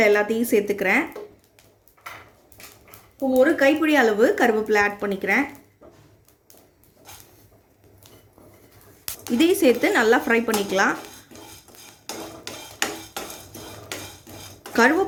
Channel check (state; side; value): identical; both; correlation 1.00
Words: எல்லாத்தையும் சேர்த்துக்கிறேன். இப்போ 1 கைப்பிடி அளவு கருவேப்பிலை ஆட் பண்ணிக்கிறேன். இதையும் சேர்த்து நல்லா ஃப்ரை பண்ணிக்கலாம்.